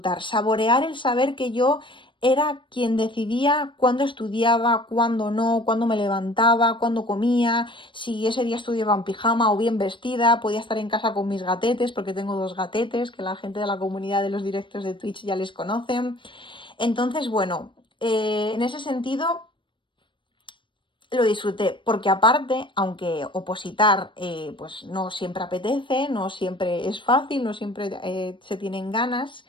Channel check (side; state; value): right; late; 0.24 ms